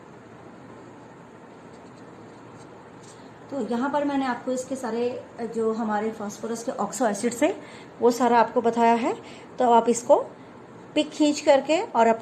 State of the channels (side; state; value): both; identical; correlation 1.00